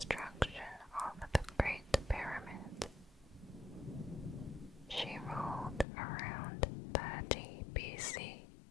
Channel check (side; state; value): right; drops out; at 5.9 s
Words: of the Great Pyramid. She ruled around 30 BC,